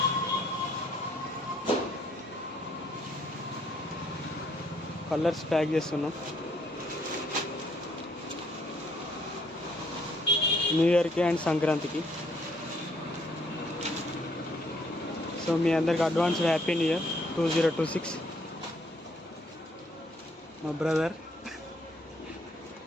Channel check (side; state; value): both; normal; correlation 0.67